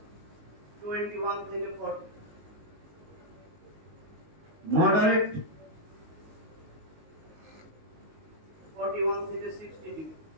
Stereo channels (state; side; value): late; left; 19 ms